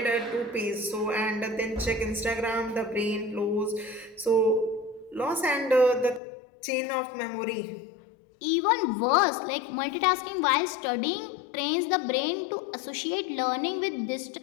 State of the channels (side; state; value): right; drops out; at 6.2 s